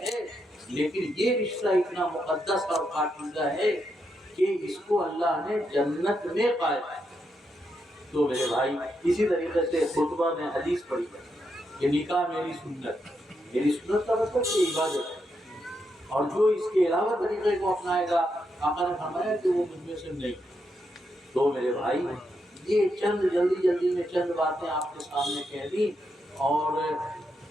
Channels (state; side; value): normal; both; correlation 0.82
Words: لیکن یہ رشتہ اتنا مقدس اور پاکیزہ ہے کہ اس کو اللہ نے جنت میں قائم کیا. تو میرے بھائی اسی طریقے سے خطبہ میں حدیث پڑھی ہے کہ نکاح میری سنت. میری سنت کا مطلب کہ عبادت ہے، اور جو اس کے علاوہ طریقے کو اپنائے گا آقا نے فرمایا کہ وہ مجھ میں سے نہیں. تو میرے بھائی یہ جلدی میں چند باتیں آپ کے سامنے کہہ دی. اور